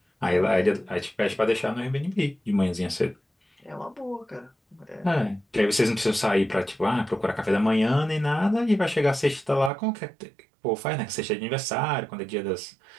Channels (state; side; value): drops out; left; at 9.7 s